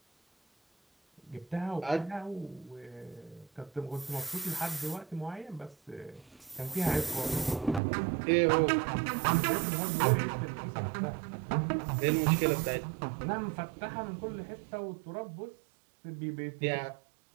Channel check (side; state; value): left; drops out; at 7.8 s